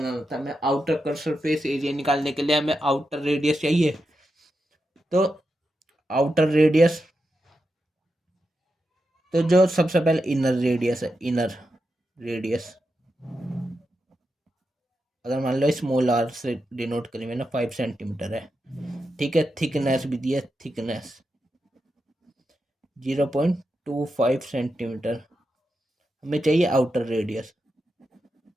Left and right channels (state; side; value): normal; both; correlation 0.87